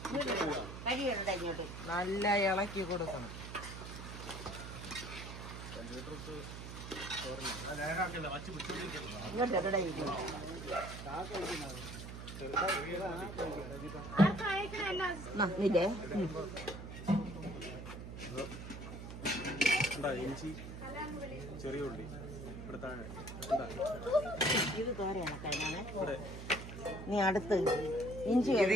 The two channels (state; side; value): noise; right; hum, 9 dB below the sound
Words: കരിയുടെ ഇങ്ങോട്ട് നല്ല ഇളക്കി കൊടുക്കണം. ഇങ്ങോട്ട് എവിടെ ഇരിക്കും? ഇല്ലേ ചെറിയ ഉള്ളി ഇത് തോരയാണ് കഴിഞ്ഞാണ്. നീ അടുത്ത് ഇഞ്ചി. ഇത്